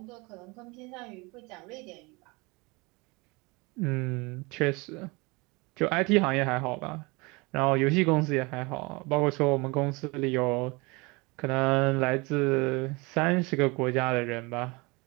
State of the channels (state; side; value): quieter; left; 26.1 dB